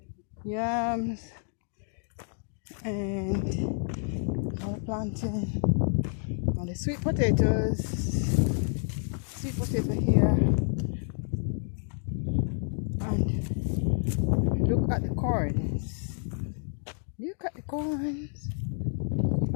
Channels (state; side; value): silent; right; 56 dB below the other